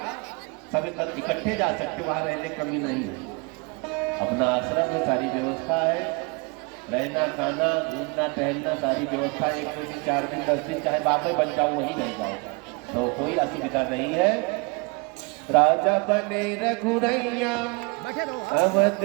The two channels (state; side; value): quieter; left; 30.5 dB